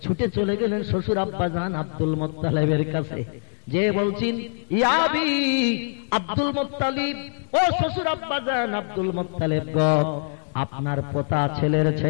ছুটে চলে গেলেন শ্বশুর আব্বাজান আব্দুল মুত্তালিবের কাছে। যে বলছেন, ইয়া আবি আব্দুল মুত্তালিব, ও শ্বশুর আব্বাজান আব্দুল মুত্তালিব গো, আপনার পোতা ছেলের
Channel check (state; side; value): silent; right; 62 dB below the other